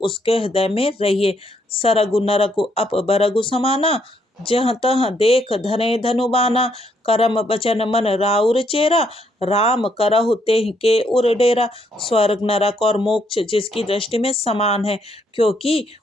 हृदय में रहिए। सरगु नरगु अप बरगु समाना, जहाँ तहाँ देख धने धनुबाना, करम बचन मन राउर चेरा, राम करहु तेहि के उर डेरा। स्वर्ग नरक और मोक्ष जिसकी दृष्टि में समान है, क्योंकि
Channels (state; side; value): normal; both; correlation 0.73